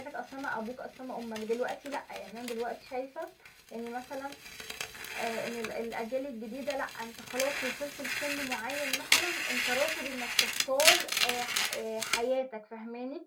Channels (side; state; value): both; identical; correlation 1.00